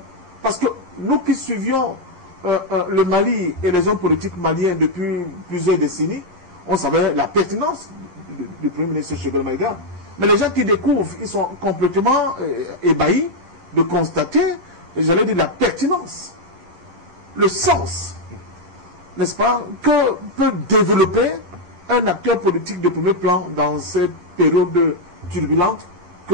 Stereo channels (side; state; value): left; late; 11 ms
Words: Parce que nous qui suivions le Mali et les hommes politiques maliens depuis plusieurs décennies, on savait la pertinence du Premier ministre Choguel Maïga. Mais les gens qui découvrent, ils sont complètement ébahis de constater, j'allais dire, la pertinence, le sens, n'est-ce pas, que peut développer un acteur politique de premier plan dans cette période turbulente